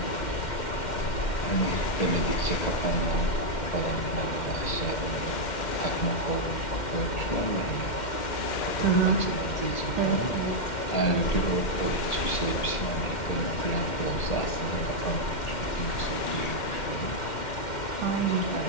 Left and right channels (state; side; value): late; right; 2.1 ms